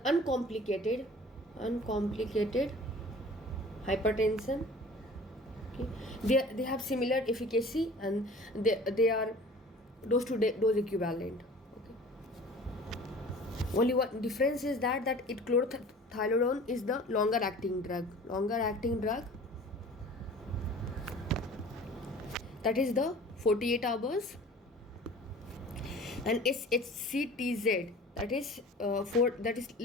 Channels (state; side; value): normal; both; correlation 0.44